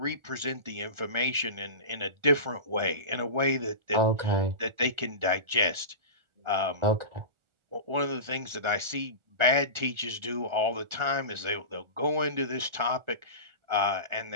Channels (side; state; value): left; late; 1.4 ms